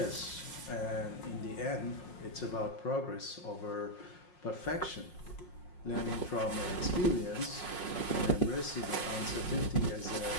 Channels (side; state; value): right; late; 5.5 ms